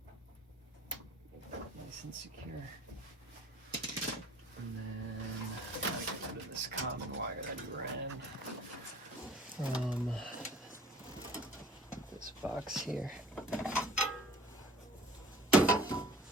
Nice and secure. And then I gotta get rid of this common wire that he ran from this box here.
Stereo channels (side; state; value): both; normal; correlation 0.49